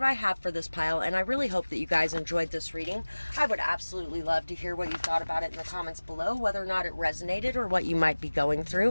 I have for this pile, and I really hope that you guys enjoyed this reading. I would absolutely love to hear what you thought about it in the comments below, whether or not it resonated or what you might be going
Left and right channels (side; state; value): both; inverted; correlation -1.00